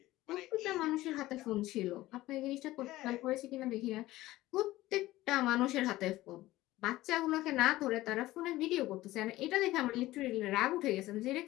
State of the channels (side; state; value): right; quieter; 17.0 dB